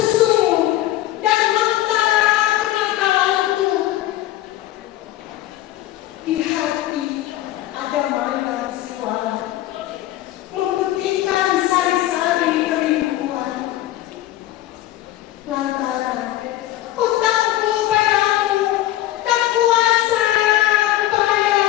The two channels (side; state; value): right; quieter; 14.6 dB